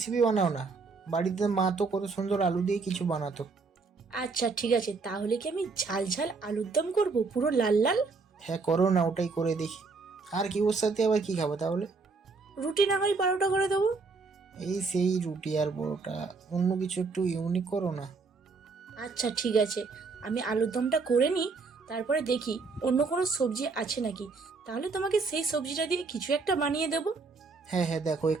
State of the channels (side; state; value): left; quieter; 4.3 dB